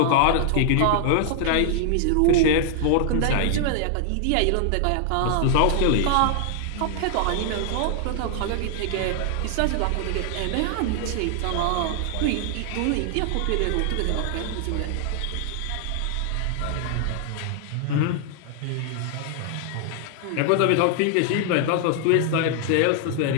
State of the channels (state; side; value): different; both; correlation 0.00